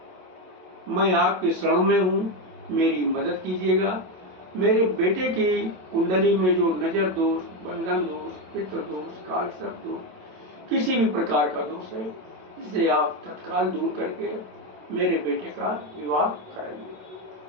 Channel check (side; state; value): left; late; 27 ms